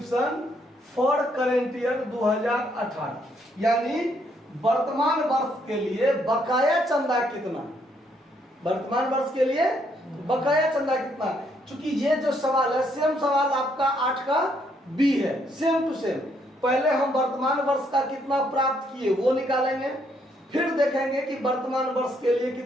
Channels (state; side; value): normal; both; correlation 0.72